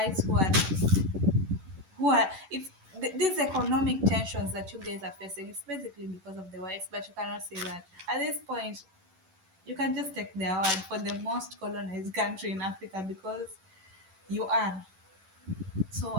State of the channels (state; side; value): late; left; 11 ms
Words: who are it's these economic tensions that you guys are facing. It's basically because of the whites, but you cannot say that at this point. You can just take their word for the most colonized country in Africa, because you are. So